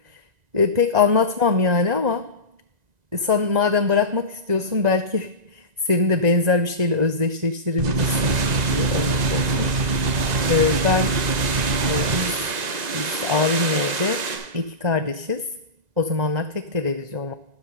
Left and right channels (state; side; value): late; left; 1.9 ms